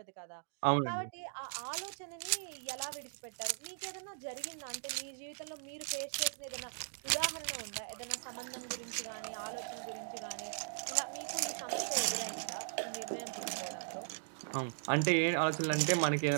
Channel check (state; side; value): silent; left; digital silence